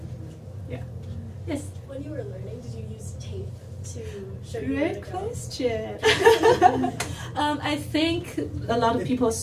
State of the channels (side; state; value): both; identical; correlation 1.00